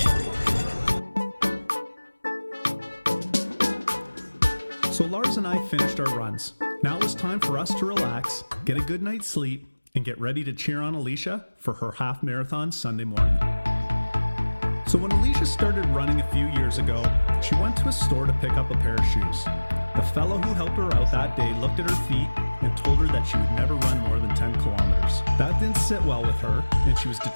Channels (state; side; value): inverted; both; correlation -1.00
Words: So Lars and I finished our runs. Now it was time for us to relax, get a good night's sleep, and get ready to cheer on Alicia for her half marathon Sunday morning. So when Alicia started running a few years ago, she went to a store to pick up a pair of shoes. The fellow who helped her out that day looked at her feet and told her that she would never run more than 10 kilometers. That didn't sit well with her, and she was